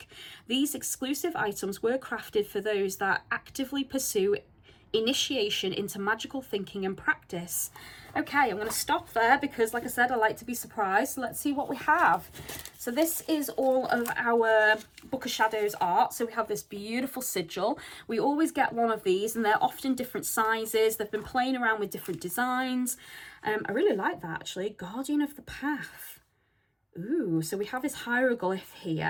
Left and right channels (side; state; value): both; identical; correlation 1.00